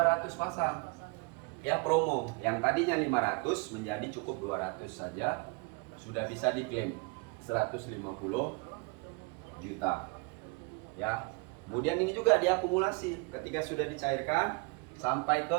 pasang ya, promo. Yang tadinya 500 menjadi cukup 200 saja, sudah bisa diklaim 150 juta ya. Kemudian ini juga diakumulasi ketika sudah dicairkan sampai ke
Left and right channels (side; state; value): left; quieter; 28.9 dB